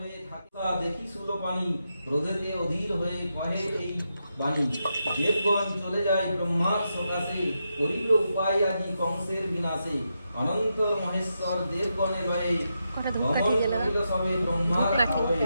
থাকা দেখি সুলো পানি, ক্রোধেতে অধীর হয়ে কহে এই বাণী। দেবগণ চলে যায় ব্রহ্মার সকাশে, করিল উপায় আজি কংসের বিনাশে। অনন্ত মহেশ্বর দেবগণে লয়ে, কটা ধূপ গমন কাঠিয়ে গেল না? করিল সবে ব্রহ্মার ধূপ কাঠি।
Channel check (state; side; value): inverted; both; correlation -0.85